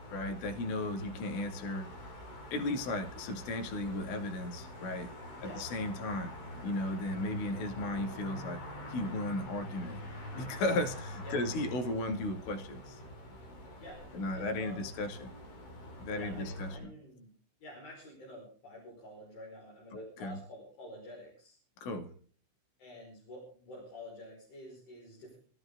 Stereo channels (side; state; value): right; late; 16 ms